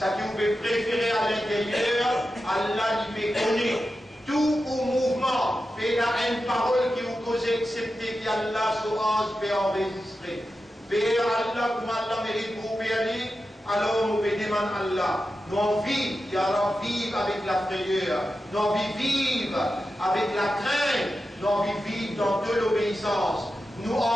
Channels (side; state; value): both; normal; correlation 0.91